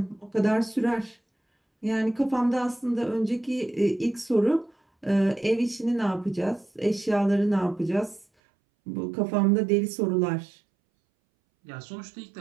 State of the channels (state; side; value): drops out; left; at 8.2 s